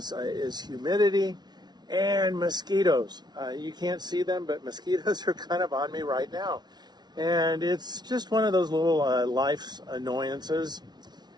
humidity and mosquitoes. You can't see them, but mosquitoes are kind of on me right now. And it's just one of those little life's annoyances.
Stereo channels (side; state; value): left; late; 0.20 ms